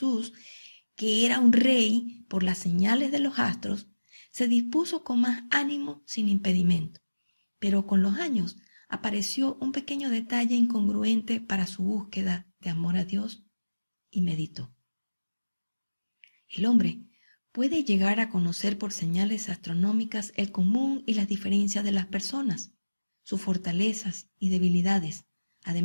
que era un rey por las señales de los astros, se dispuso con más ánimo sin impedimento. Pero con los años apareció un pequeño detalle incongruente para su búsqueda de amor a Dios y meditó. El hombre puede llegar a conocer por señales astronómicas el común y las diferencias de las personas, sus fortalezas y debilidades.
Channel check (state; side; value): inverted; both; correlation -1.00